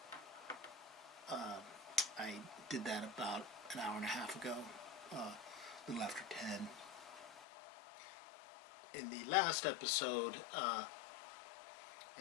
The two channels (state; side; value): drops out; right; at 7.5 s